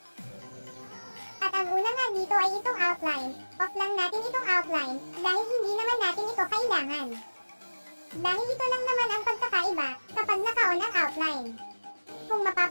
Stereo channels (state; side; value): inverted; both; correlation -1.00